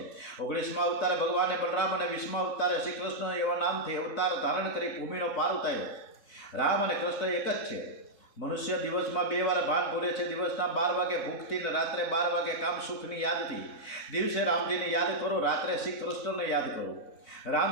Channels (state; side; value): late; right; 3.7 ms